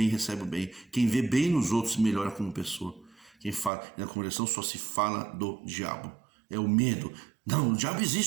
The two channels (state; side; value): drops out; left; at 3.7 s